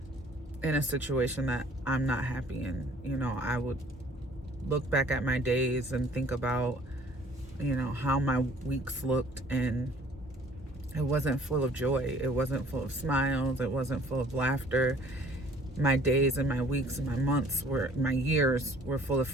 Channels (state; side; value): normal; both; correlation 0.54